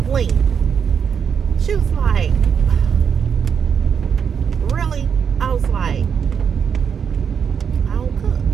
She was like, really? I was like, I don't cook.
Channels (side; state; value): left; quieter; 7.1 dB